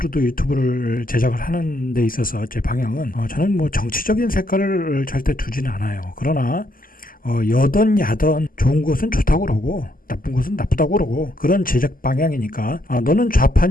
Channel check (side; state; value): right; late; 0.41 ms